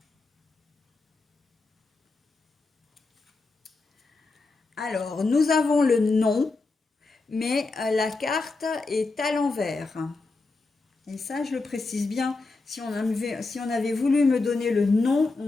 Alors, nous avons le nom, mais la carte est à l'envers. Et ça, je le précise bien. Si on avait voulu me donner le nom, on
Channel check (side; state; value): right; quieter; 3.6 dB